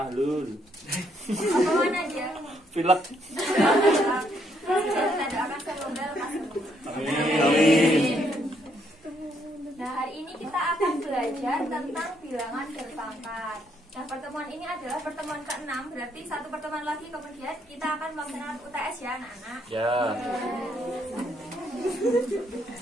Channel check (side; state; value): both; normal; correlation 0.72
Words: Apa mana dia? Pilek. Kita doakan semoga lekas sembuh. Amin. Nah, hari ini kita akan belajar tentang bilangan berpangkat. Nah, pertemuan ini adalah pertemuan ke-6, berarti satu pertemuan lagi kemudian kita akan melaksanakan UTS ya, anak-anak. Ya.